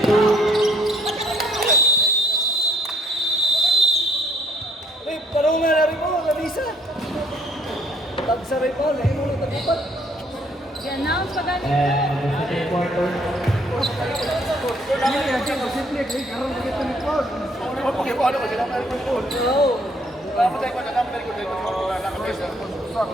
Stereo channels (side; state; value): both; normal; correlation 0.64